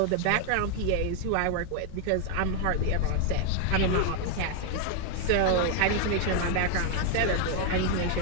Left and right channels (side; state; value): both; different; correlation 0.00